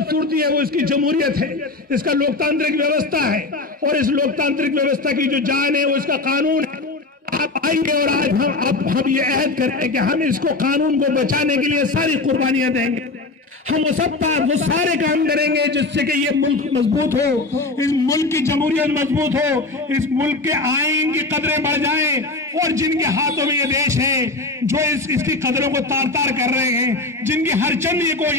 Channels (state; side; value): quieter; right; 3.3 dB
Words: है वो इसकी जमहूरियत है, इसका लोकतांत्रिक व्यवस्था है और इस लोकतांत्रिक व्यवस्था की जो जान है वो इसका कानून है। आप आएंगे और आज हम ये अहद करें कि हम इसको कानून को बचाने के लिए सारी कुर्बानियां देंगे, हम वो सारे काम करेंगे जिससे कि ये मुल्क मजबूत हो, इस मुल्क की जमहूरियत मजबूत हो, इस मुल्क के आईन की कदरें बढ़ जाएं और जिनके हाथों में ये देश है जो इसकी कदरों को तार तार कर रहे हैं, जिनकी हर चंद ये